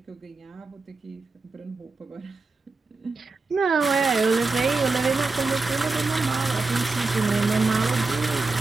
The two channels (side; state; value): left; quieter; 3.8 dB